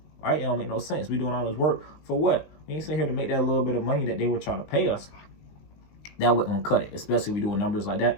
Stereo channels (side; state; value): right; late; 19 ms